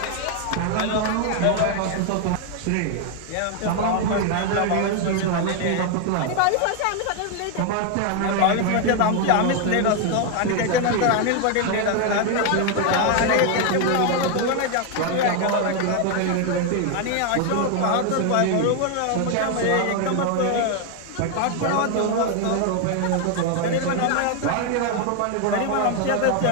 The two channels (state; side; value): different; both; correlation 0.01